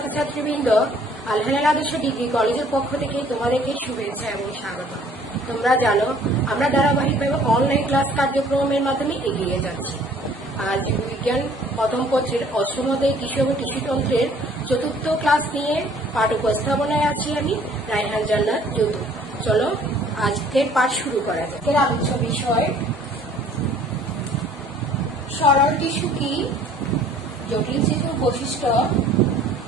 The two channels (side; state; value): both; normal; correlation 0.56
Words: আল-হেলাল আদর্শ ডিগ্রি কলেজের পক্ষ থেকে তোমাদেরকে শুভেচ্ছা এবং স্বাগত। তোমরা জানো আমরা ধারাবাহিকভাবে অনলাইন ক্লাস কার্যক্রমের মাধ্যমে এগিয়ে যাচ্ছি। আজ বিজ্ঞান প্রথম পত্রের অষ্টম অধ্যায় কৃষি এবং কৃষিতন্ত্রের চতুর্থ ক্লাস নিয়ে পাঠ উপস্থাপনায় আছি আমি রায়হান জান্নাত যদু। চলো আজকের পাঠ শুরু করা যাক। এর আলোচ্য বিষয় সরল টিস্যু কি, জটিল টিস্যুর বৈশিষ্ট্য,